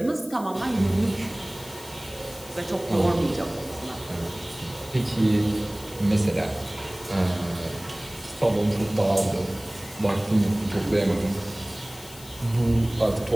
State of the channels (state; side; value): noise; left; hiss, 18 dB below the sound